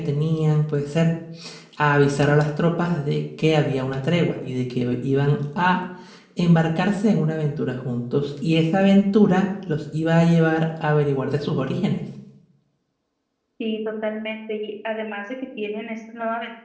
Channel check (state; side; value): identical; both; correlation 1.00